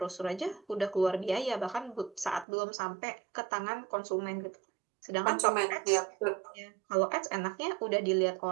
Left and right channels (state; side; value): drops out; left; at 2.5 s